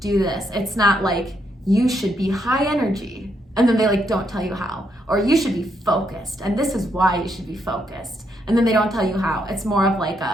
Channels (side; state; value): both; normal; correlation 0.77